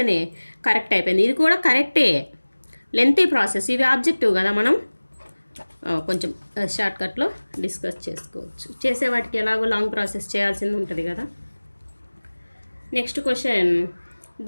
కరెక్ట్ అయిపోయింది. ఇది కూడా కరెక్టే, లెంతీ ప్రాసెస్. ఇవి ఆబ్జెక్టివ్ కదా, మనం కొంచెం షార్ట్కట్లో డిస్కస్ చేసుకోవచ్చు. చేసే వాటికి ఎలాగో లాంగ్ ప్రాసెస్ చేయాల్సింది ఉంటుంది కదా. Next question,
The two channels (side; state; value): both; inverted; correlation -1.00